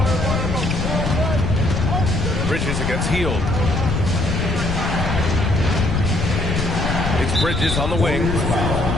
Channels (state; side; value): noise; left; rumble, 1 dB below the sound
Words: Bridges against Hield. It's Bridges on the wing.